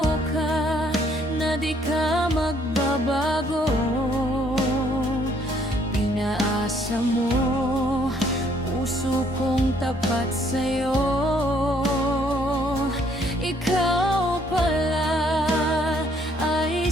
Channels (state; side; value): normal; both; correlation 0.65